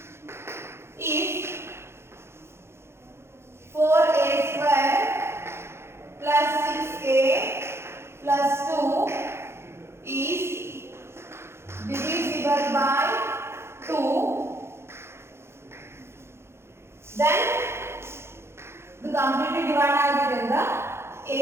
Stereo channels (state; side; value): late; left; 0.12 ms